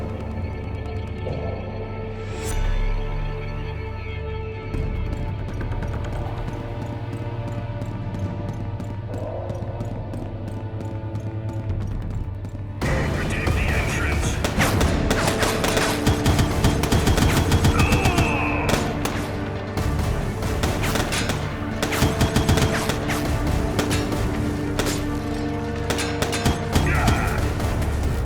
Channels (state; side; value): identical; both; correlation 1.00